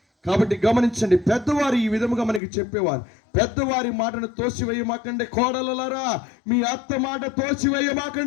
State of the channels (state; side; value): drops out; right; at 2.4 s